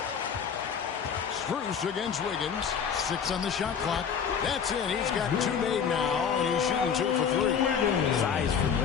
Strus against Wiggins. 6 on the shot clock. That's it. He's got 2 made now, and he's shooting 2 for 3. Size from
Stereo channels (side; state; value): right; quieter; 7.1 dB